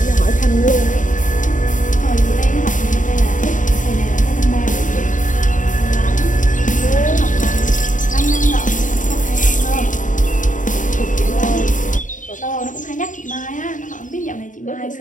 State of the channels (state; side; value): late; right; 0.37 ms